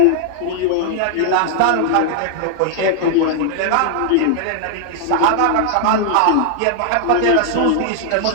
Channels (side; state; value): both; different; correlation 0.00